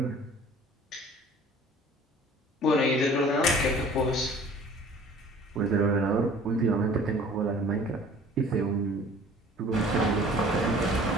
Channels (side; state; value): both; normal; correlation 0.49